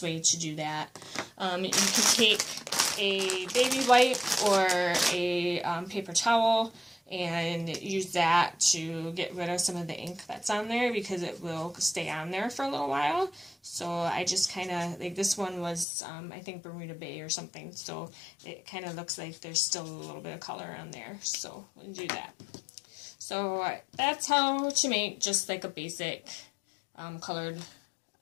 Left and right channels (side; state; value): right; drops out; at 15.9 s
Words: way to do that. You can take a baby wipe or a paper towel and use that to get rid of some of the ink that's on there, because it will stay on there for a little while. So I just kind of, like this one was, I think Bermuda Bay or something, so it kind of looks like there's still a little bit of color on there, so we'll do that. So that's how to make just like a basic colored